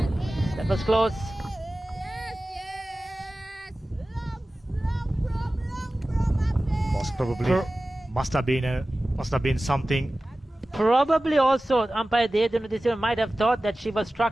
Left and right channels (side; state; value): both; normal; correlation 0.96